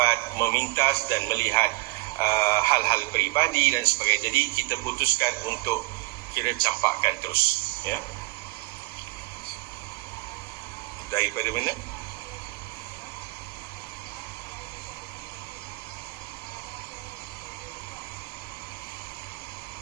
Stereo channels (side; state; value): left; quieter; 22.5 dB